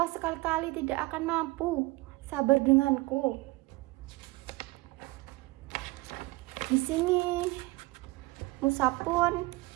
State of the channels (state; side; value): quieter; left; 22.4 dB